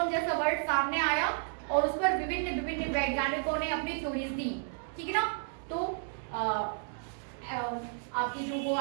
जैसा वर्ड सामने आया और उस पर विभिन्न विभिन्न वैज्ञानिकों ने अपनी थ्योरीज दी, ठीक है ना। तो आपकी जो वो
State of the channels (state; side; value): silent; left; 56 dB below the other